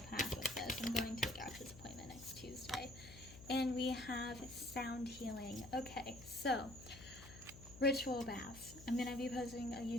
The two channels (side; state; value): left; noise; hum, 16 dB below the sound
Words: path with this. I'm going to a doctor's appointment next Tuesday. And we have sound healing. Okay, so ritual baths. I'm going to be posting a